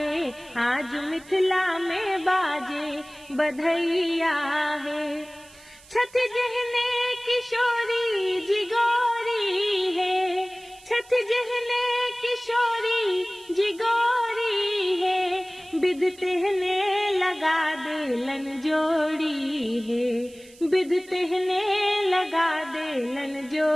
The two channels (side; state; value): right; noise; hiss, 24 dB below the sound